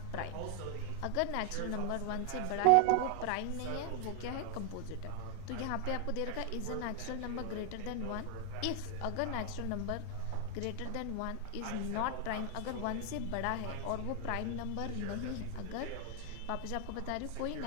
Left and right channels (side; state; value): both; different; correlation 0.00